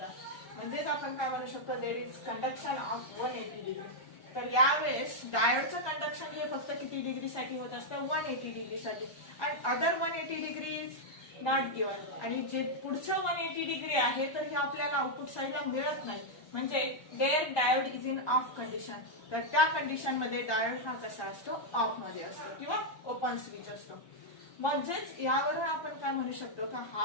म्हणजेच आपण काय म्हणू शकतो, there is conduction of 180 degree. तर यावेळेस डायोडचं कंडक्शन हे फक्त किती डिग्रीसाठी होत असतं, 180 डिग्रीसाठी. आणि other 180 degree is not given. आणि जे पुढचं 180 डिग्री आहे तर हे आपल्याला आउटपुट साईडला मिळत नाही. म्हणजे there diode is in off condition. तर त्या कंडिशन मध्ये डायोड हा कसा असतो, ऑफ मध्ये असतो किंवा ओपन स्विच असतो. म्हणजेच यावरून आपण काय म्हणू शकतो का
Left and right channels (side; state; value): right; late; 1.2 ms